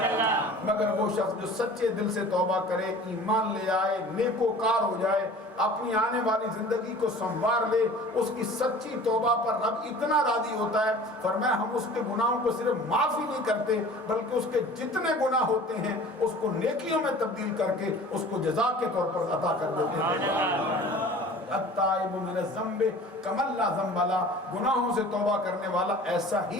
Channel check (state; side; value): normal; both; correlation 0.44